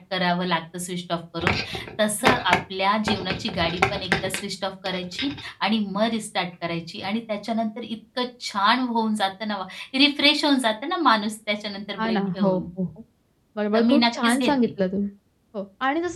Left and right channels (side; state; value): both; identical; correlation 1.00